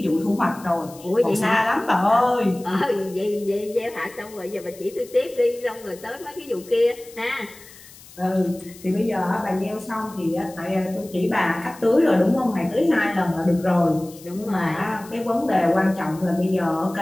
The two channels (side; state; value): left; noise; hiss, 21 dB below the sound